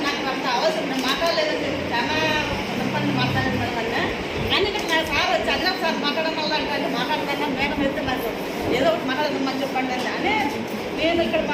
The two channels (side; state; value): both; identical; correlation 1.00